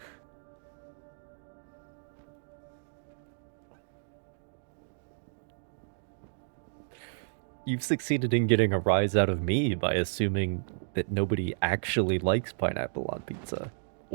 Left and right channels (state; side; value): silent; left; digital silence